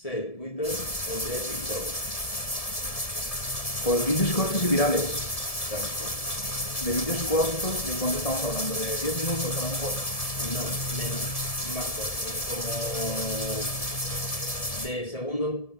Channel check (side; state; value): right; late; 1.7 ms